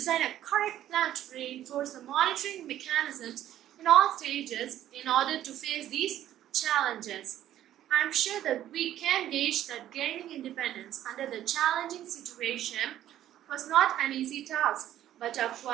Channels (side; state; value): left; quieter; 12.3 dB